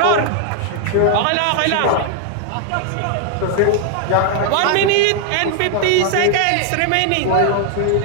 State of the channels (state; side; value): different; both; correlation 0.00